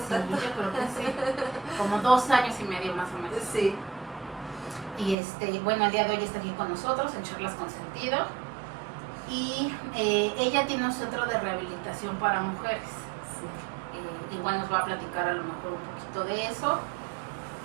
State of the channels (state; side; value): drops out; left; at 5.2 s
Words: tanto? Yo creo que sí, como 2 años y medio más o menos. Sí. Y bueno, el día de hoy está aquí con nosotros en Charlas con Sentido. Y ella tiene un centro de rehabilitación para mujeres. Sí. Igual nos va a platicar a lo mejor un poquito de eso,